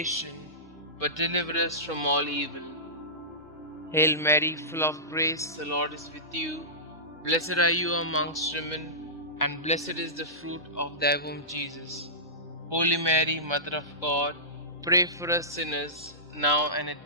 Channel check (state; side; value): normal; both; correlation -0.19